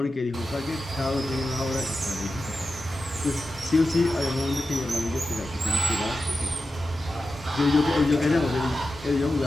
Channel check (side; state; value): both; normal; correlation 0.92